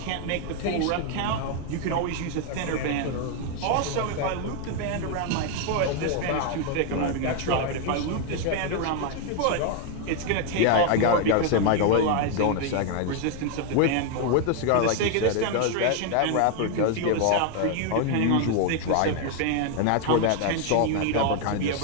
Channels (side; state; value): both; different; correlation 0.01